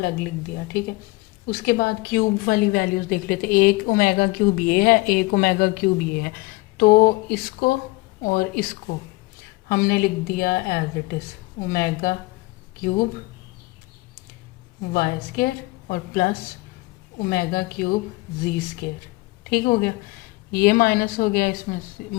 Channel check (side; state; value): right; quieter; 22.7 dB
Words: लिख दिया, ठीक है। उसके बाद क्यूब वाली वैल्यूज देख लेते हैं, एक ओमेगा क्यूब ये है, एक ओमेगा क्यूब ये है, तो इसको और इसको हमने लिख दिया as it is omega cube y square और plus omega cube g square, ठीक हो गया। ये माइनस हो गया, इसमें